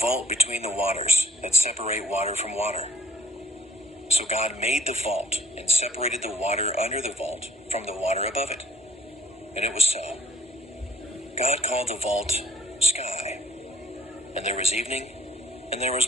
between the waters that separate water from water." So God made the vault and separated the water under the vault from the water above it. And it was so. God called the vault sky. And there was evening, and there was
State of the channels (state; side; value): normal; both; correlation 0.60